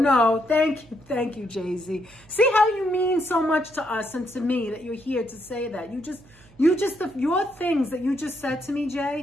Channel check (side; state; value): right; noise; hum, 26 dB below the sound